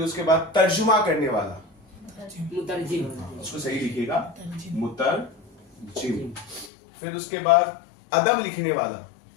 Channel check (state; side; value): drops out; right; at 6.7 s